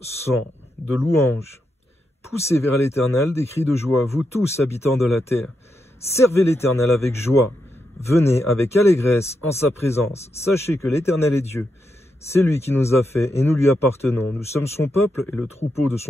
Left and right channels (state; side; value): normal; both; correlation 0.84